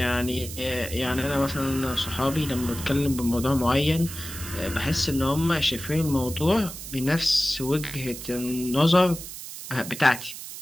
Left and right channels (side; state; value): right; noise; hiss, 11 dB below the sound